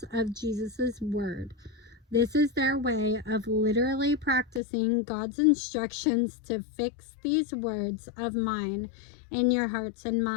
of Jesus' word. This is their way of literally practicing God's instructions to fix these words of mine in your hearts and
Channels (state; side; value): drops out; right; at 4.6 s